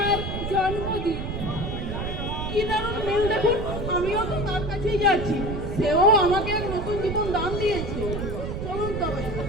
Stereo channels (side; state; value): right; noise; rumble, 5 dB below the sound